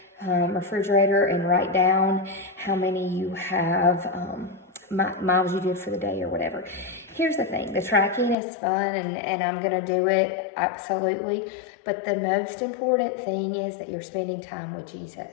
refrigerator, and write down how many you have, miles you did for the day or whatever. Here's the thing, the tracking is fun, and I'm going to do it, absolutely. But the most important thing is that you're spending time with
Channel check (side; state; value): right; drops out; at 8.3 s